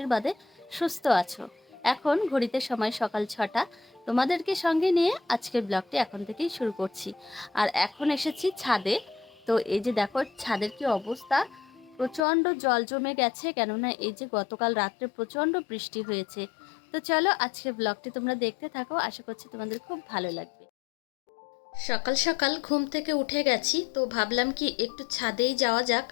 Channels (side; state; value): right; drops out; at 12.2 s